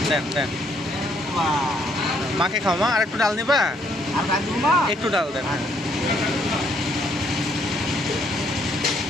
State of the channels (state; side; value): normal; both; correlation 0.69